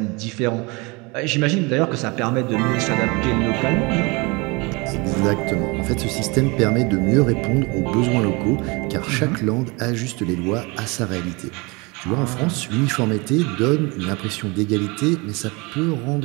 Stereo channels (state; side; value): quieter; left; 27.1 dB